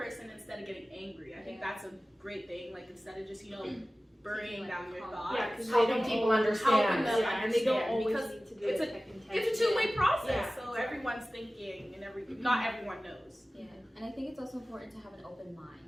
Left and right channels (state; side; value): normal; both; correlation 0.97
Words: instead of getting angry. I think that's a great thing. Like, instead of just, burying down your thoughts. Yeah, because Helping people understand. them and they don't understand, always because need to do it's it. It's a two-way process, Yeah, so exactly. everyone's thinking and not everyone knows. Yeah, and I think it's also important to have an open mind